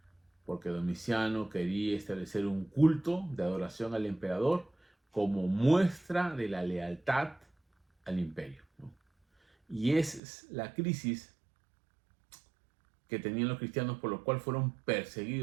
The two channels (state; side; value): drops out; left; at 10.2 s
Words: porque Domiciano quería establecer un culto de adoración al emperador como muestra de la lealtad al imperio, ¿no? Y esa es la crisis que tenían los cristianos, por lo cual fueron